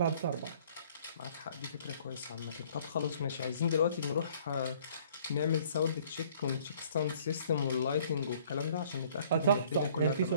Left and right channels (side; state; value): both; inverted; correlation -0.57